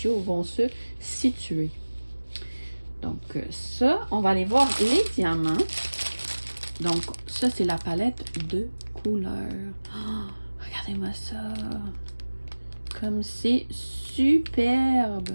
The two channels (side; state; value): both; inverted; correlation -1.00